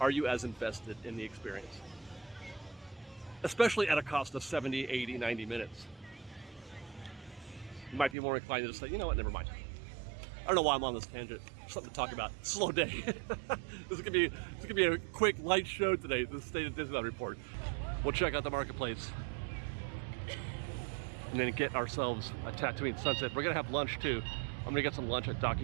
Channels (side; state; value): left; drops out; at 8.2 s